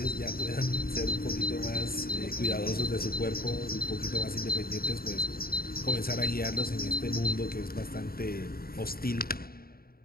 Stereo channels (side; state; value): right; late; 0.43 ms